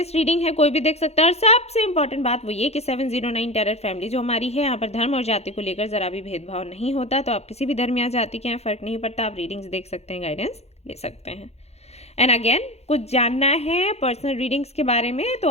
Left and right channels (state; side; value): late; right; 0.31 ms